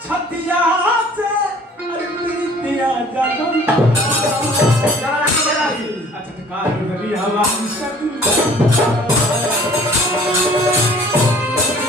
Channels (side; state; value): both; normal; correlation 0.52